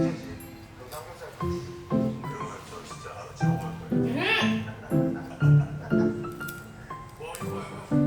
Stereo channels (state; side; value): identical; both; correlation 1.00